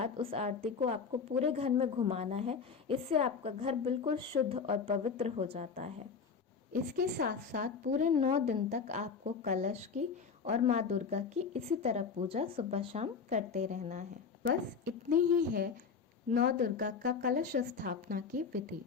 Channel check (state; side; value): quieter; right; 5.7 dB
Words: उस आरती को आपको पूरे घर में घुमाना है। इससे आपका घर बिल्कुल शुद्ध और पवित्र हो जाता है। इसके साथ साथ पूरे 9 दिन तक आपको कलश की और माँ दुर्गा की इसी तरह पूजा सुबह शाम करते रहना है। बस इतनी ही है नौ दुर्गा का कलश स्थापना की विधि।